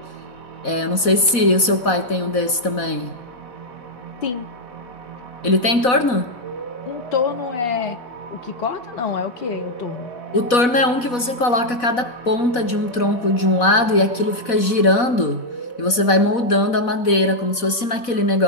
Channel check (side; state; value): right; late; 4.1 ms